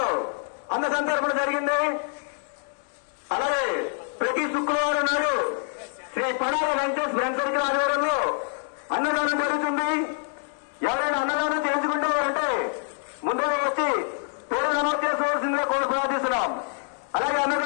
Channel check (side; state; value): right; silent; 61 dB below the other